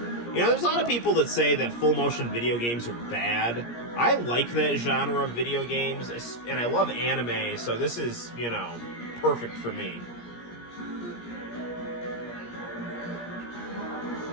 There's a lot of people that say that full-motion video games are bad. I like that genre of video games, and I love anime, so this is, perfect for me.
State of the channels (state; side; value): late; right; 17 ms